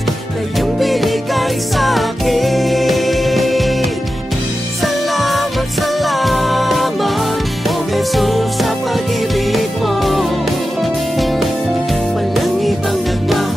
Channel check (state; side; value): normal; both; correlation 0.92